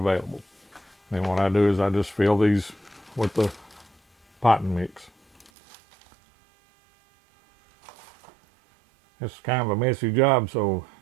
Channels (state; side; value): drops out; left; at 5.5 s